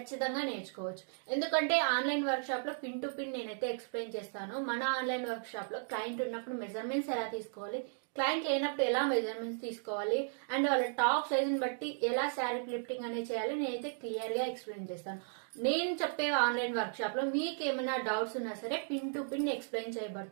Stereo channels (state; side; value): silent; left; digital silence